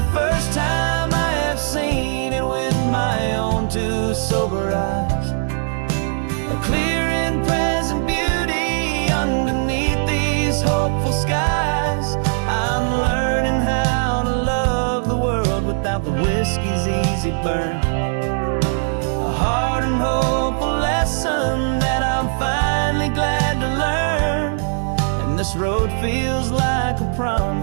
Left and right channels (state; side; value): silent; left; digital silence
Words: first time I have seen it with my own two sober eyes. A clear and present beauty underneath these hopeful skies. I'm learning how to love the world without the whiskey's easy burn. A hard and hopeful lesson that I'm finally glad to learn. And this road feels like a